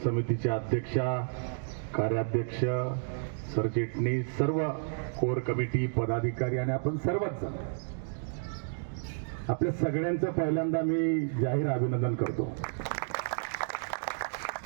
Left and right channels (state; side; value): silent; left; digital silence